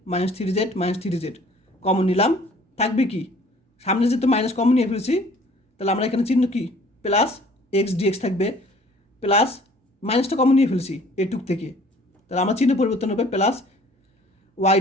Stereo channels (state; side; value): normal; both; correlation 0.54